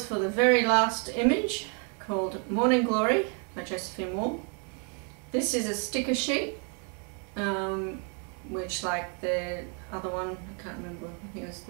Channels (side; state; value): left; quieter; 39.1 dB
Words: for the very last image, called Morning Glory by Josephine Wall. This is a sticker sheet, which, like the other one, I can't remember, I think it was